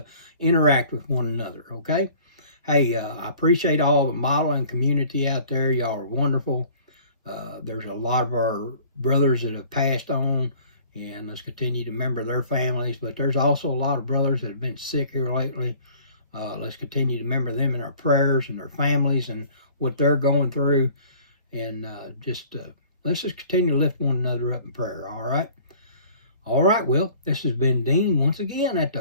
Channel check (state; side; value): inverted; both; correlation -0.50